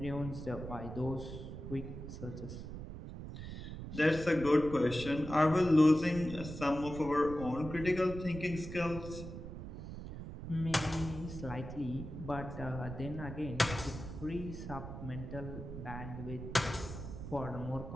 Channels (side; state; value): right; noise; rumble, 9 dB below the sound